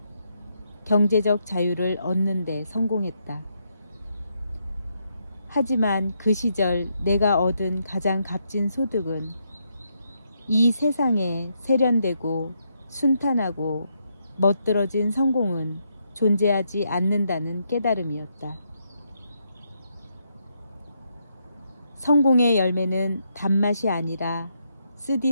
경제적 자유를 얻는 데 성공했다. 하지만 그 시절 내가 얻은 가장 값진 소득은 이 세상에 세련되고 순탄하고 멋들어진 성공은 존재하지 않는다는 깨달음이었다. 성공의 열매는 단맛이 아니라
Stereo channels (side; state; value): both; inverted; correlation -0.79